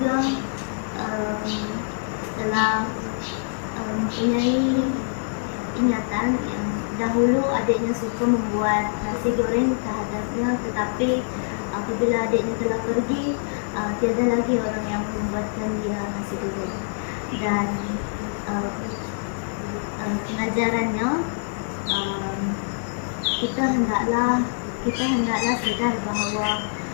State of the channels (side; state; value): right; silent; 62 dB below the other